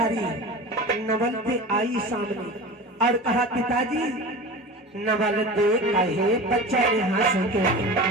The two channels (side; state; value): both; normal; correlation 0.32